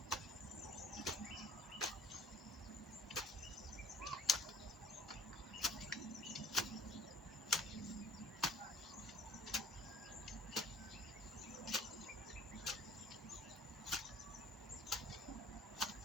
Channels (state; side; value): normal; both; correlation 0.52